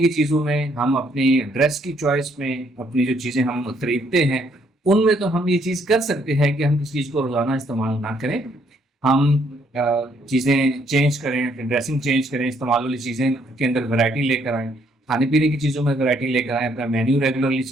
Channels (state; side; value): normal; both; correlation 0.69